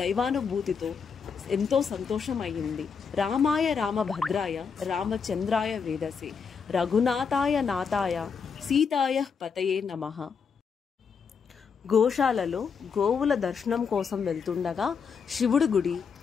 దైవానుభూతితో ఎంతో సంతోషం అయింది. రామాయ రామభద్రాయ రామచంద్రాయ వేదసే రఘునాథాయ నాథాయ సీతాయ పతయే నమః. గోశాలలో గోవుల దర్శనం కోసం వెళ్తుండగా శివుడి గుడి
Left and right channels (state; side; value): quieter; right; 6.1 dB